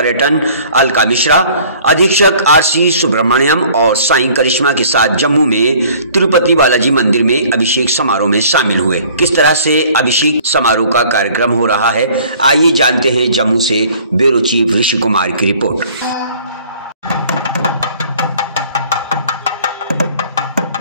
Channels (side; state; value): both; inverted; correlation -0.53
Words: अलका मिश्रा, अधीक्षक आरसी सुब्रमण्यम और साईं करिश्मा के साथ जम्मू में तिरुपति बालाजी मंदिर में अभिषेक समारोह में शामिल हुए। किस तरह से अभिषेक समारोह का कार्यक्रम हो रहा है, आइए जानते हैं जम्मू से ब्यूरो चीफ ऋषि कुमार की रिपोर्ट।